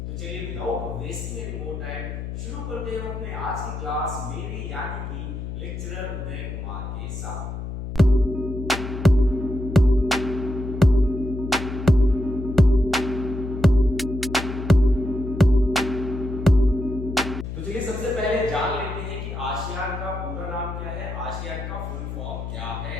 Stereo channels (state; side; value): noise; left; hum, 7 dB below the sound